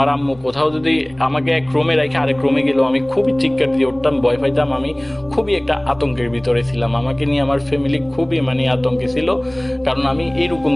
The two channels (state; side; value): noise; right; rumble, 25 dB below the sound